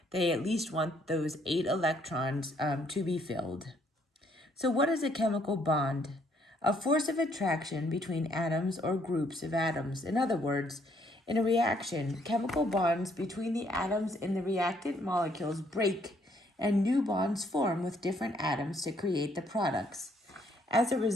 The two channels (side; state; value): both; normal; correlation 0.68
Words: They at least want those 8 electrons to be filled. So what is a chemical bond? A force of attraction between atoms or groups of atoms. In other words, in a reaction, chemical bonds between the atoms in the reactant molecules break and new bonds form with different atoms to create the products. As a